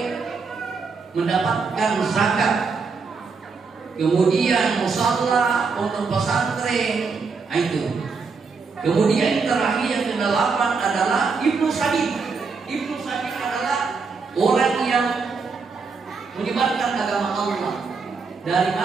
mendapatkan zakat. Kemudian musalla, pondok pesantren, itu. Kemudian terakhir yang ke-8 adalah Ibnu Sabil. Ibnu Sabil adalah orang yang menyebarkan agama Allah dari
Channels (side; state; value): left; quieter; 4.9 dB